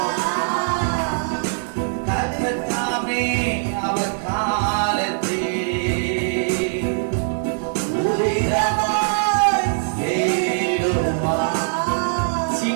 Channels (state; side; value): silent; left; digital silence